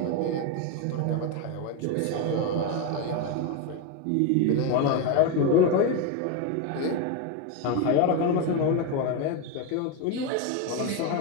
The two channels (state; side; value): different; both; correlation 0.02